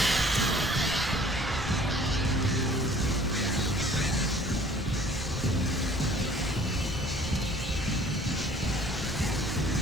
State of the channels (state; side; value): normal; both; correlation 0.53